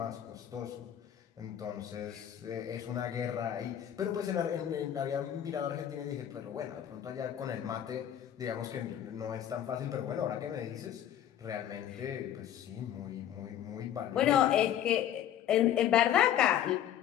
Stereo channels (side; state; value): right; quieter; 10.6 dB